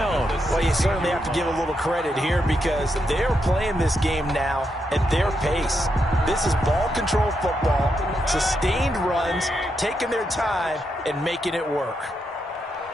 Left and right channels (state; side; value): normal; both; correlation 0.82